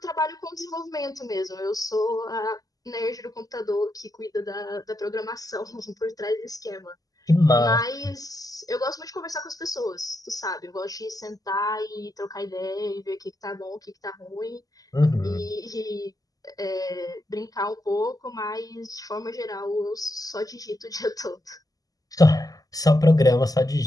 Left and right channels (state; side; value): late; right; 0.17 ms